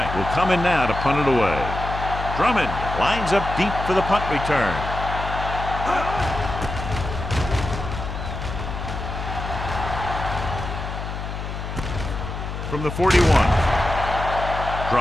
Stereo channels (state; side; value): noise; left; hum, 6 dB below the sound